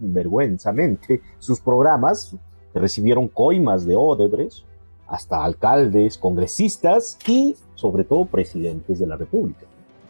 sus programas, que recibieron coimas de Odebrecht, hasta alcaldes, congresistas y sobre todo presidentes de la República.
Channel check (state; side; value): inverted; both; correlation -1.00